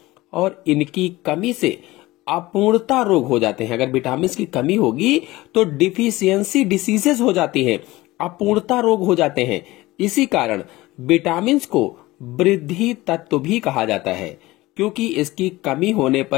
और इनकी कमी से अपूर्णता रोग हो जाते हैं। अगर विटामिन की कमी होगी तो डिफिशियंसी डिसीजेस हो जाती हैं, अपूर्णता रोग हो जाते हैं। इसी कारण विटामिन को वृद्धि तत्व भी कहा जाता है, क्योंकि इसकी कमी होने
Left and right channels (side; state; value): right; quieter; 19.1 dB